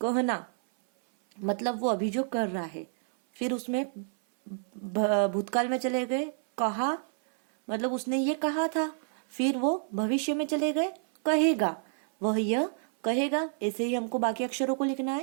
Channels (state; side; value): silent; left; 59 dB below the other